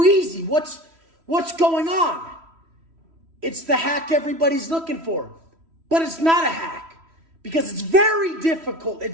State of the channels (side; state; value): left; late; 3.1 ms